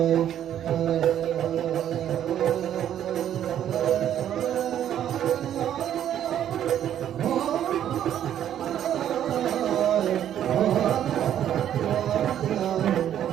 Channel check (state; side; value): quieter; left; 10.6 dB